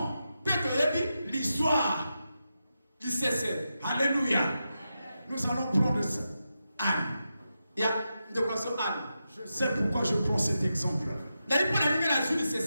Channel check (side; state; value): both; inverted; correlation -0.88